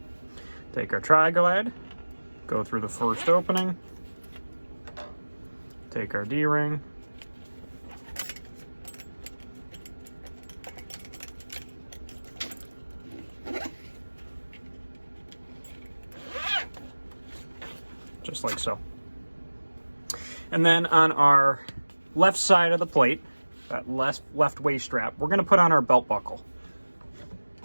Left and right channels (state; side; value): inverted; both; correlation -1.00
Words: Take our tri-glide, go through the first opening, take our D-ring, just like so. And then on our left side of the plate, that left waist strap, we're gonna put on our belt buckle.